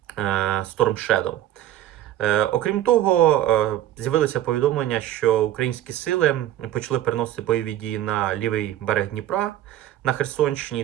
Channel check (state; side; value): quieter; left; 12.8 dB